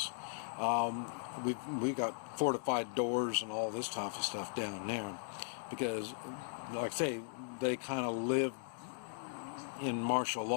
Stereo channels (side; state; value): right; silent; digital silence